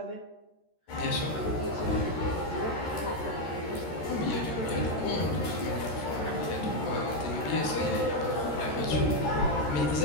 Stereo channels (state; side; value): late; right; 13 ms